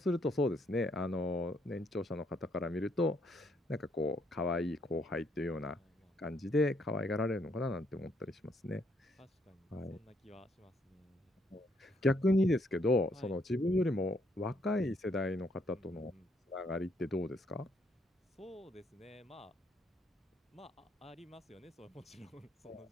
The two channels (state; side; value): normal; both; correlation 0.71